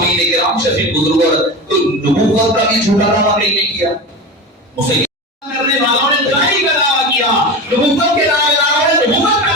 کرام شفیق بزرگ تو نبوت کا بھی جھوٹا دعویٰ نہیں کیا، مسلمان کرنے والوں نے دائی کا دعویٰ کیا، نبوت کے دعوے داروں نے نبوت کا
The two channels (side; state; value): both; normal; correlation 0.26